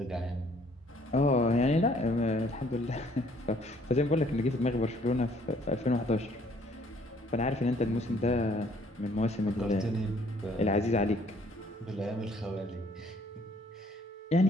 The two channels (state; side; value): normal; both; correlation 0.61